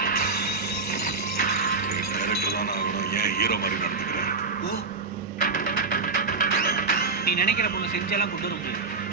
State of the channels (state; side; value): quieter; left; 4.4 dB